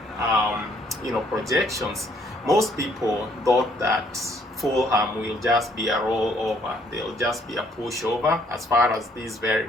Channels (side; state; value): both; normal; correlation 0.65